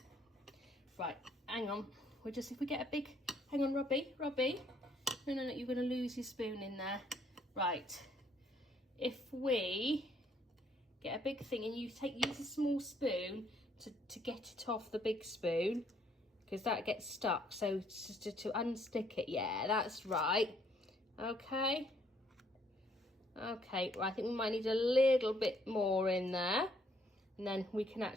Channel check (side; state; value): both; normal; correlation 0.67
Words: Right, hang on. If we get a big, hang on, Robbie. No, you're going to lose your spoon in there. Right, if we get a big thing and you use a small spoon to get it off the big spoon, because that gets stuck. So just to unstick it, yeah, that's right. Okay. Okay, well, I think we might need a little bit more in there, and then we can